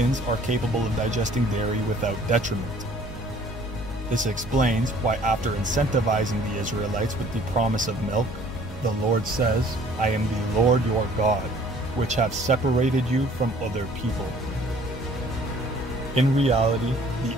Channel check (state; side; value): normal; both; correlation 0.55